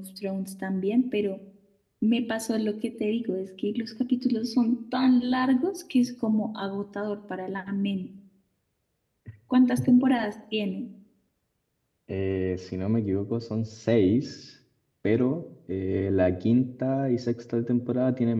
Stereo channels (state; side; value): identical; both; correlation 1.00